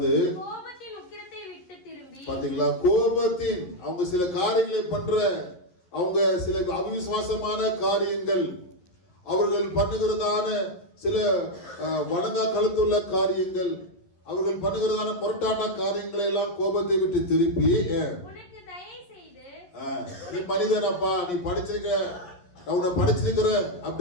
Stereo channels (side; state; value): right; late; 11 ms